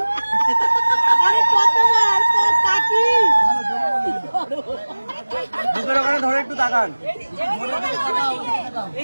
ধরে একটু তাকান,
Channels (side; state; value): both; inverted; correlation -1.00